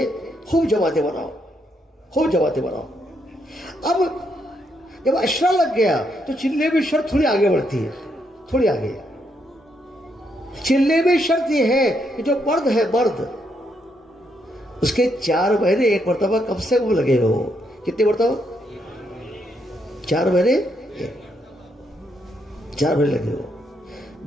خوب جماعتیں بناؤ. اب جب عشرہ لگ گیا تو چلے میں شرط تھوڑی آگے بڑھتی ہے. تھوڑی آگے چلے میں شرط یہ ہے کہ جو مرد ہے، مرد اس کے 4 مہینے 1 مرتبہ کم سے کم لگے ہو. کتنے مرتبہ؟ 4 مہینے 4 مہینے لگے ہو.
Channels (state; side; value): normal; both; correlation 0.77